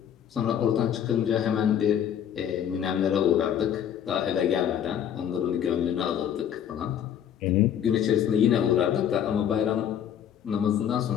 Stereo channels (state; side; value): quieter; right; 9.4 dB